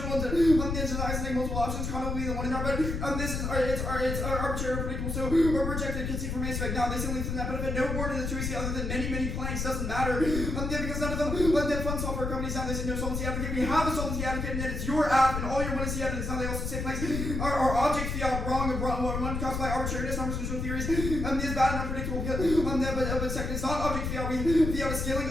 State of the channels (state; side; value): noise; left; rumble, 3 dB below the sound